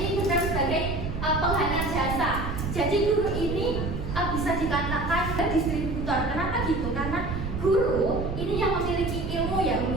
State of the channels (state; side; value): noise; right; rumble, 5 dB below the sound